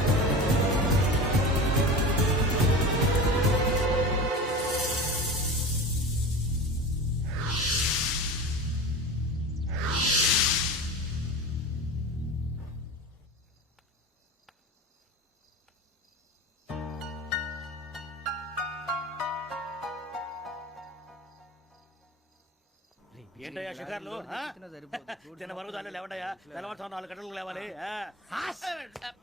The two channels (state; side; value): normal; both; correlation 0.31